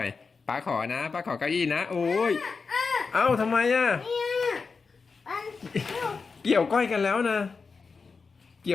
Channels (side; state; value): right; quieter; 4.8 dB